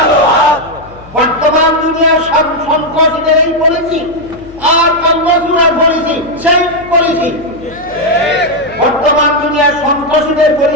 হাত বর্তমান দুনিয়ার সন্ত্রাসীদের এই পলিসি আর কংগ্রেসুরার পলিসি সেই পলিসি। বর্তমান দুনিয়ার সন্ত্রাসীদের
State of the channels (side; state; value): left; noise; hum, 21 dB below the sound